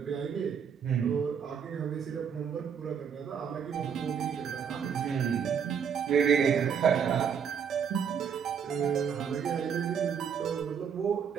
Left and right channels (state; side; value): quieter; left; 7.4 dB